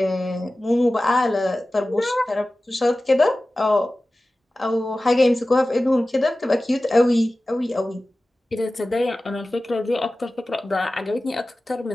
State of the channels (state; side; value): normal; both; correlation 0.96